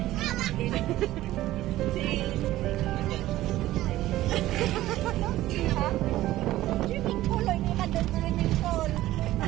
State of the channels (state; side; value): quieter; left; 15.4 dB